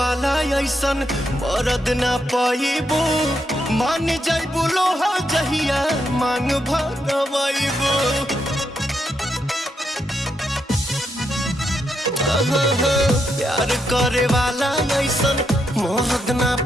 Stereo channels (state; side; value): normal; both; correlation 0.81